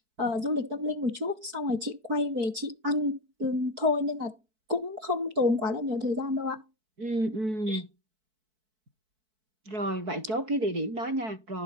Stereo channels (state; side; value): late; left; 4.6 ms